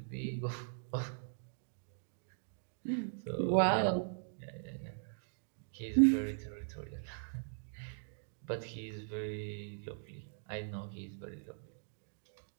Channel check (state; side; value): silent; left; digital silence